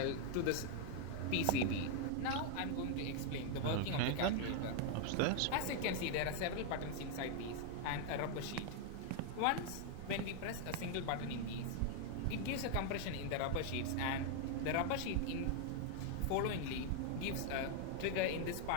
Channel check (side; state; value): both; different; correlation 0.00